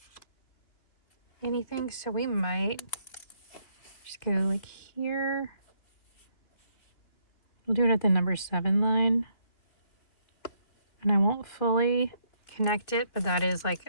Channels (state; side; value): late; right; 3.2 ms